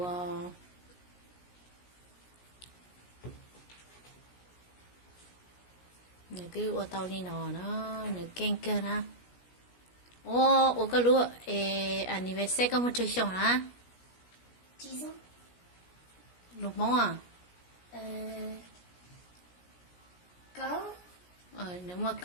nửa cái ô tô đi nó nửa ken cơ na ô cái lúa anniversaire có một chơi xong hả chị sao lúc mong à có nếu mà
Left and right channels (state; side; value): late; right; 17 ms